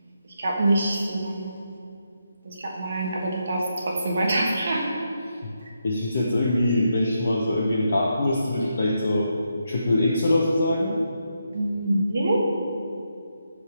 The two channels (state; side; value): inverted; both; correlation -0.82